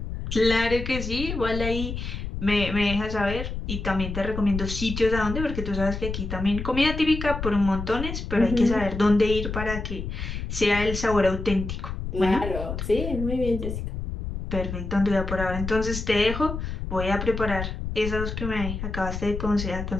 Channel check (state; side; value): noise; left; rumble, 5 dB below the sound